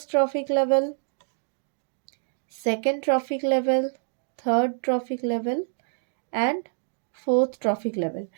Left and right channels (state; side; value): silent; left; digital silence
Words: trophic level, second trophic level, third trophic level and fourth trophic level.